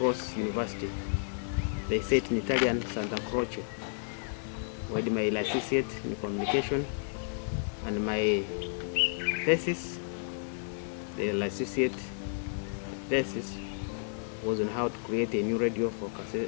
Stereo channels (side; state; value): right; silent; 56 dB below the other